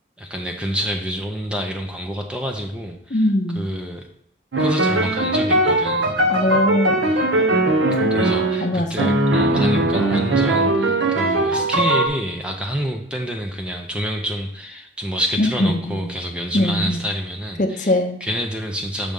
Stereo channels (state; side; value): normal; both; correlation 0.32